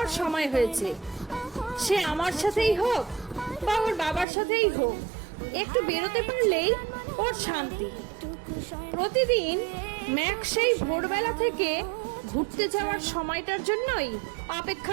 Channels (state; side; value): drops out; left; at 4.2 s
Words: সময় হয়েছে। সে আমার সাথেই হোক বা ওর বাবার সাথেই হোক, একটু বেরোতে পারলেই ওর শান্তি। প্রতিদিন ম্যাক সেই ভোরবেলা থেকে ঘুরতে যাওয়ার সময়টার জন্যই